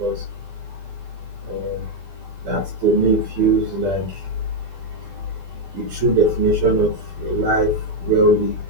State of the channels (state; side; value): late; left; 12 ms